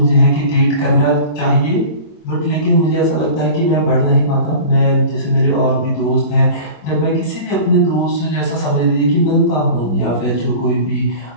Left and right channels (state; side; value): late; right; 25 ms